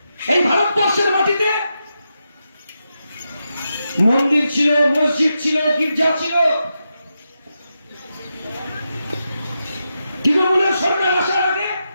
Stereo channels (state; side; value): inverted; both; correlation -0.87